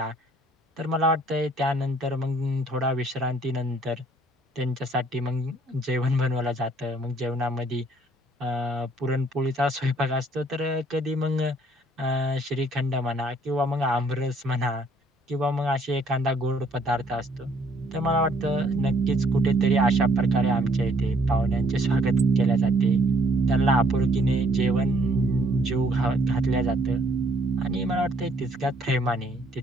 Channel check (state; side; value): normal; both; correlation 0.63